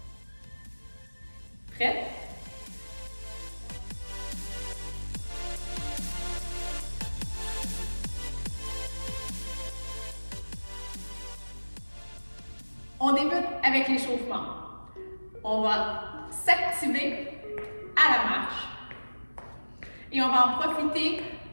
Prête? On débute avec l'échauffement. On va s'activer à la marche et on va en profiter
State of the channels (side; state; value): both; inverted; correlation -1.00